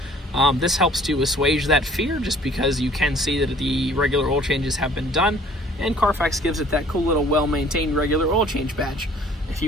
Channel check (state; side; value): normal; both; correlation 0.54